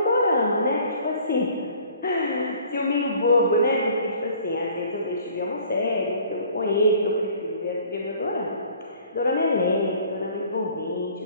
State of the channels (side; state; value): both; inverted; correlation -0.53